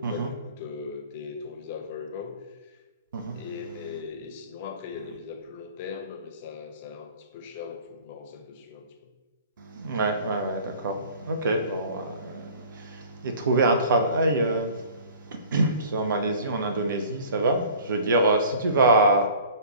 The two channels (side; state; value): both; inverted; correlation -0.46